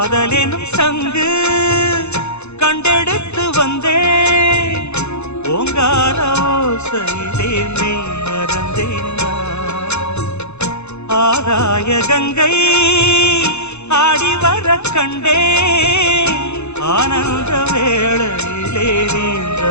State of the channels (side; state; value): right; late; 0.81 ms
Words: காதலெனும் சங்கு கண்டெடுத்து வந்தேன் ஓங்கார ஓசையிலே மெய் மறந்தேன் ஆகாய கங்கை ஆடி வர கண்டேன் ஆனந்த வேளையிலே நீந்த